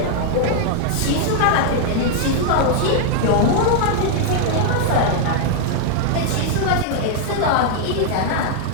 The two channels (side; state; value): both; different; correlation 0.00